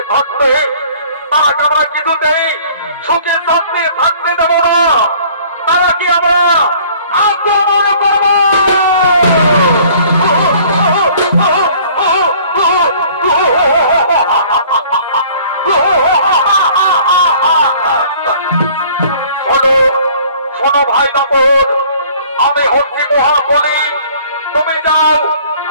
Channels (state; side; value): inverted; both; correlation -0.53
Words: থাকতে তারাকে আমরা কিছুতেই সুখে শান্তি থাকতে দেব না। তারা কি আমরা আক্রমণ করব? শোনো ভাই দাপর, আমি হচ্ছি মহাবলী। তুমি